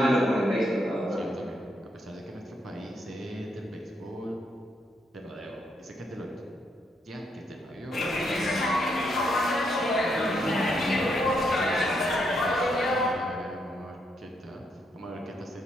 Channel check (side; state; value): both; normal; correlation 0.77